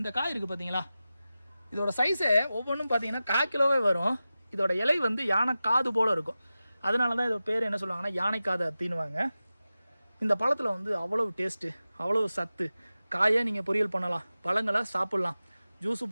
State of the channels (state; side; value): inverted; both; correlation -0.94